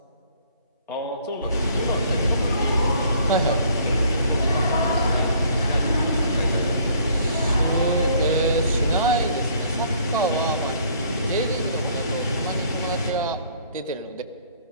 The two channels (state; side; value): inverted; both; correlation -0.60